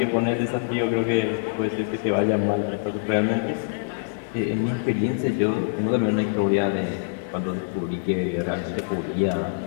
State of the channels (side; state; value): right; silent; digital silence